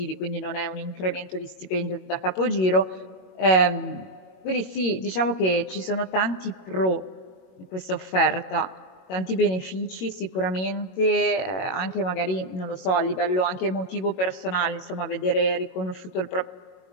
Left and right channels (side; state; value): right; late; 22 ms